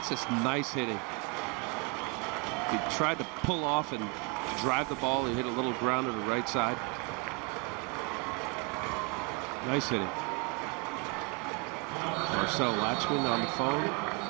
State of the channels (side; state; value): left; quieter; 29.4 dB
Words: just nice hitting. He tried to pull off and drive the ball. He hit a little ground to the right side. Nice hitting. Marcel Latchman on the phone.